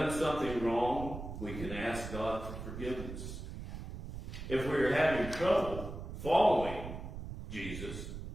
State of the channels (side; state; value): right; noise; rumble, 8 dB below the sound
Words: something wrong, we can ask God for forgiveness. If we are having trouble following Jesus,